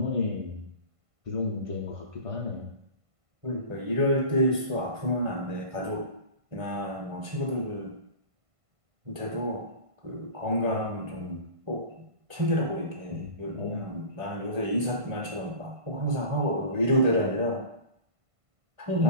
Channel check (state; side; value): late; left; 1.5 ms